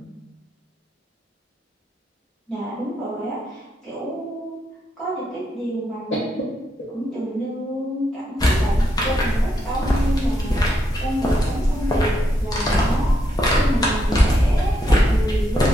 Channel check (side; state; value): both; normal; correlation 0.79